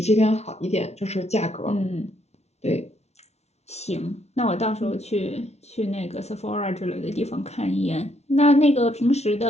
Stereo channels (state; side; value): late; right; 0.31 ms